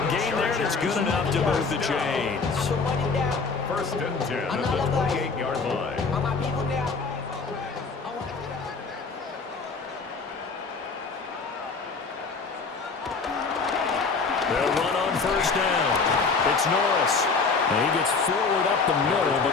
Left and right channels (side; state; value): right; quieter; 4.6 dB